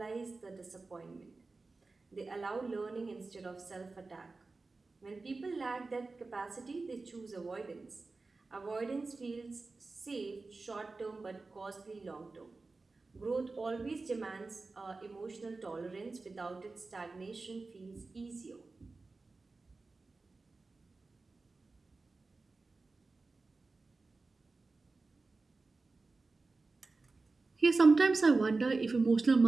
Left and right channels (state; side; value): quieter; left; 3.7 dB